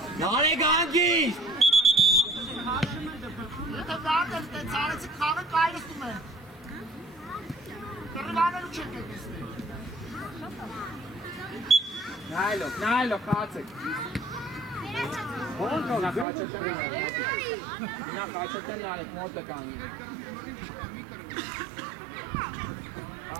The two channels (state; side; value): drops out; left; at 16.2 s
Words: Նարեկ հանգիստ։ Եթե վարդել տենց արեցիք խաղը կայլստում են։ Կրվանելու չեք եկեսնի։ Նայլով, խաղացեք։ Նա խաչետեն նարեք, մոտը կանգնի։